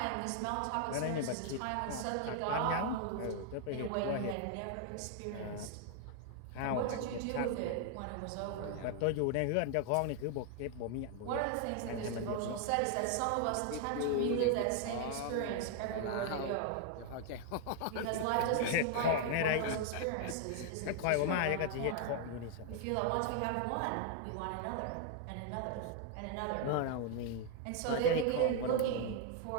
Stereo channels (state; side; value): different; both; correlation 0.00